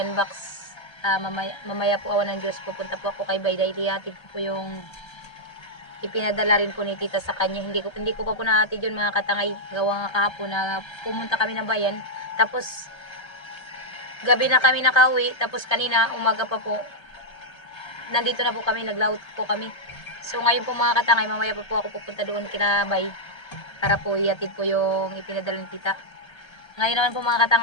box. Mamaya po awan ng Diyos pupunta po ako kay Bayday. Ihatid ko po yung ipinadala rin po ni tita sa kanya. Hindi ko pa po nahatid yun mga katangay. Gawa nga kahapon na pumunta kami ng bayan. Tapos gabi na kami nakauwi. Tapos kanina umaga pa po nandito na po kami, naglaut po kami. So ngayon po mga katangay, mamaya pa po ako pupunta doon kina Bay para po ihatid po yung ipinadala ni tita. Ngayon naman po mga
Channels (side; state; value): right; late; 1.3 ms